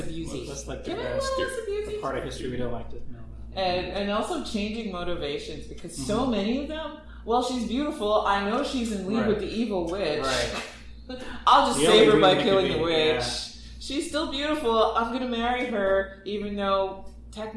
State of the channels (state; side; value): identical; both; correlation 1.00